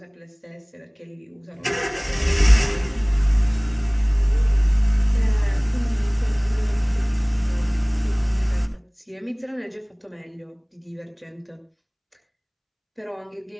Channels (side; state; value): both; identical; correlation 1.00